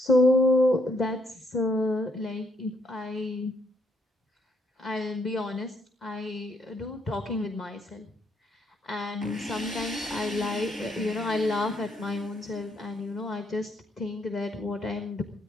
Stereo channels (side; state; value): both; normal; correlation 0.72